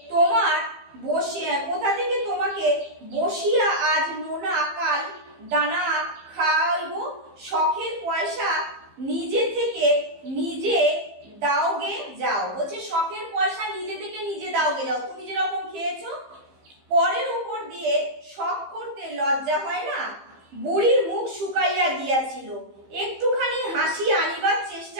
তোমাকে বসিয়া আজ নোনা, কাল দানা খাইব? শখের পয়সা নিজে থেকে নিজে দাওগে যাও। বলছে শখের পয়সা নিজে থেকে নিজে দাওগে যাও, তুমি যেরকম খেয়েছো। পরের উপর দিয়ে শখ করতে লজ্জা হয় না? বুড়ির মুখ শুকাইয়া গিয়াছিল। একটুখানি হাসি আনিবার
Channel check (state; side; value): late; left; 15 ms